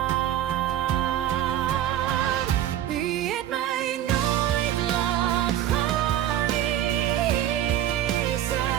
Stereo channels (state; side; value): quieter; left; 11.7 dB